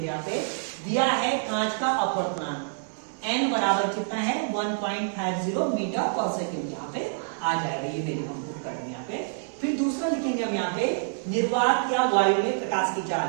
यहाँ पे दिया है कांच का अपवर्तनांक n बराबर कितना है? 1.50 मीटर पर सेकेंड। यहाँ पे आ जाएगा, ये वैल्यू हम पुट करेंगे यहाँ पे। फिर दूसरा लिखेंगे हम यहाँ पे निर्वात या वायु में प्रकाश की चाल।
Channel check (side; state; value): left; silent; digital silence